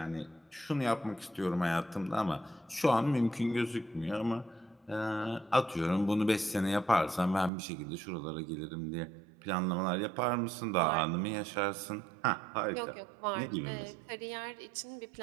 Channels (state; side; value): drops out; left; at 7.5 s